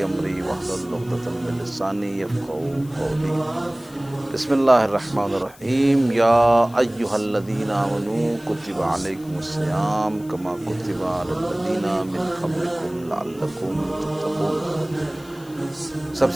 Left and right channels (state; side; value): noise; left; hiss, 23 dB below the sound